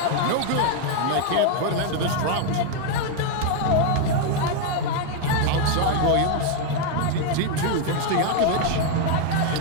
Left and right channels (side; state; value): both; different; correlation 0.01